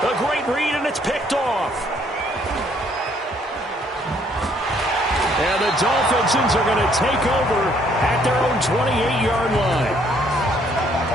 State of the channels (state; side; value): normal; both; correlation 0.66